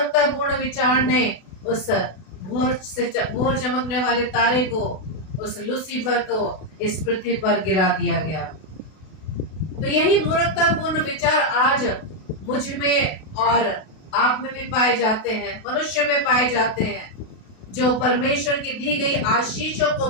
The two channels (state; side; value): late; right; 32 ms